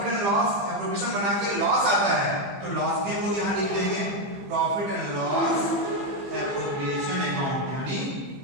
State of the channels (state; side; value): late; left; 15 ms